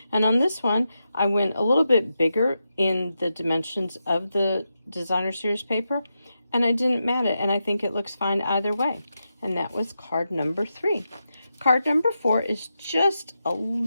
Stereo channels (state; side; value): inverted; both; correlation -0.88